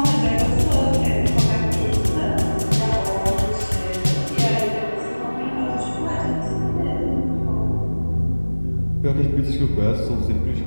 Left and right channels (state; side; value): inverted; both; correlation -1.00